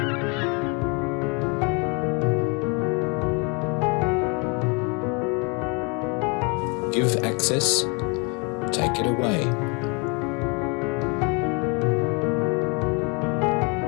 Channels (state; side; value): quieter; right; 32.0 dB